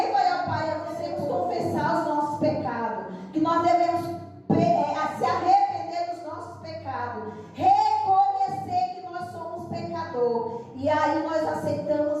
vai ao Pai a não ser confessar os nossos pecados. Que nós devemos se arrepender dos nossos pecados, reconhecer que nós somos pecador, e aí nós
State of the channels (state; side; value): identical; both; correlation 1.00